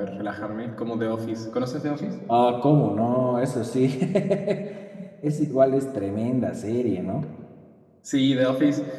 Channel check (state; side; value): identical; both; correlation 1.00